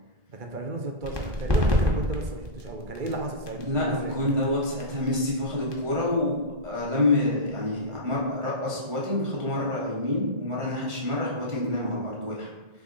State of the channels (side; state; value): left; late; 1.5 ms